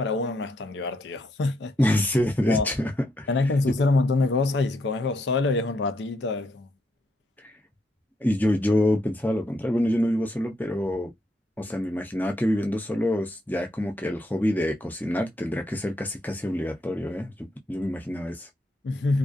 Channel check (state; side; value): normal; both; correlation 0.77